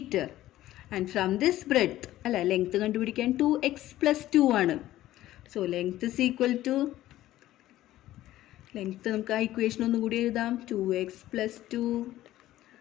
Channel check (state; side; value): quieter; right; 14.7 dB